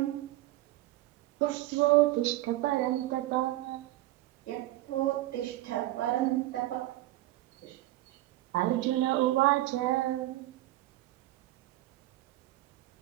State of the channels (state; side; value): quieter; left; 16.7 dB